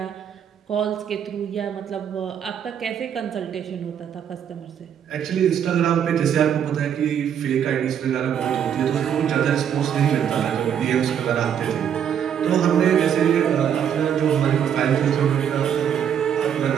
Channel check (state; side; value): quieter; left; 8.8 dB